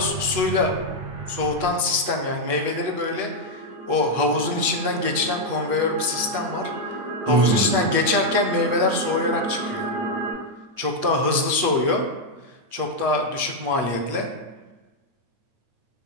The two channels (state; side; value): late; left; 8.4 ms